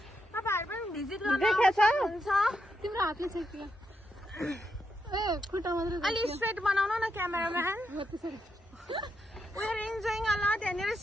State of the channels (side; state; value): both; normal; correlation 0.82